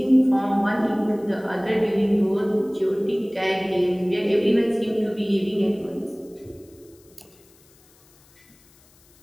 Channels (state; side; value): noise; left; hiss, 30 dB below the sound